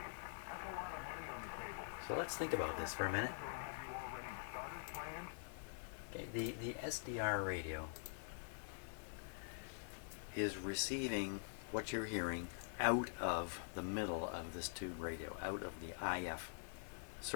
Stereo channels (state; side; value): silent; right; digital silence